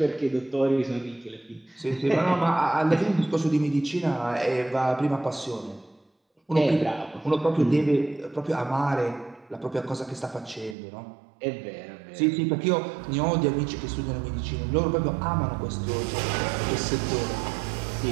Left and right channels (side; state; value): left; drops out; at 10.8 s